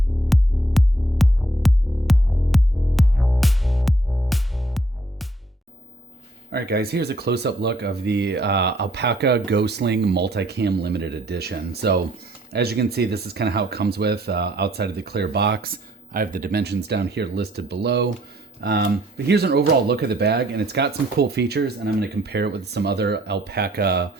All right, guys, here's a close-up look of the Alpaka Gosling Multicam Limited Edition. So as you can see, this is kind of how it comes with outside of the clear box. I have the dimensions down here listed below. But here's an overall look of the bag, and it's got some cool features, and I'm going to compare it with some other Alpaka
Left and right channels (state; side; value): normal; both; correlation 0.65